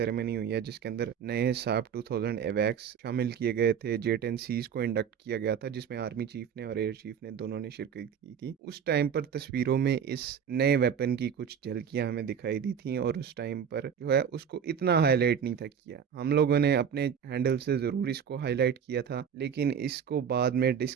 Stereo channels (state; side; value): quieter; left; 7.7 dB